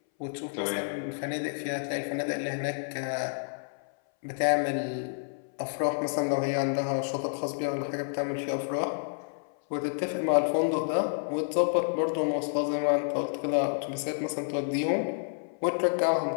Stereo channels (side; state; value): right; silent; 58 dB below the other